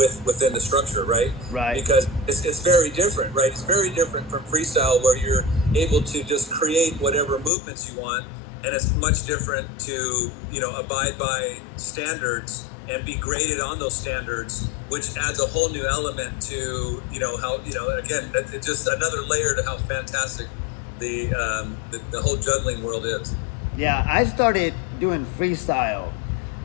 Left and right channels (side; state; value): right; drops out; at 7.5 s